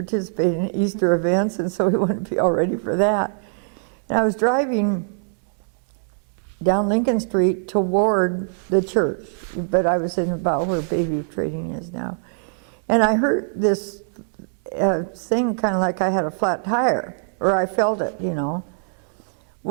in Easter events, and so we wanted to be all ready for that. And I was driving down Lincoln Street toward the church, but I was in about where Bayview Trading is now. And I heard this thing kind of like I had a flat tire, or I felt it,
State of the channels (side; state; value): left; silent; digital silence